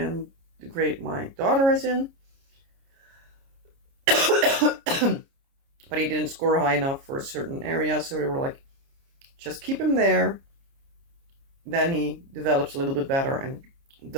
the grade my daughter is in. But he didn't score high enough for a certain area, so they were like, just keep him there. then he develops a little bit better and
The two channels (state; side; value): late; left; 29 ms